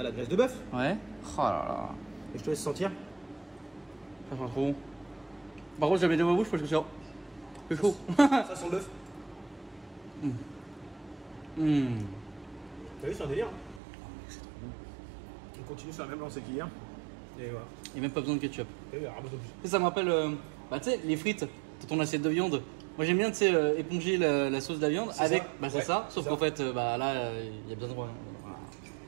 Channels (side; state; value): left; drops out; at 13.8 s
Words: la graisse de bœuf. Ouais. Oh là là. Et je te laisse sentir. Ça sent trop bon. Par contre, j'avais dans ma bouche parce que c'est chaud. Ça sent le bœuf. T'as vu, c'est un délire. C'est trop bon. On continue sur la même lancée qu'hier. Et voilà. Il n'y a même pas besoin de ketchup. T'as vu, ramasse plus. Ça me rappelle, tu sais, les frites dans ton assiette de viande. Moi j'aime bien, tu sais, éponger la sauce de la viande avec. Ça. Bah c'est ça, sauf qu'en fait, là, il y a besoin de. Voilà.